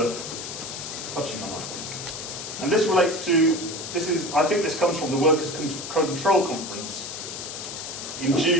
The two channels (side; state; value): left; noise; hiss, 8 dB below the sound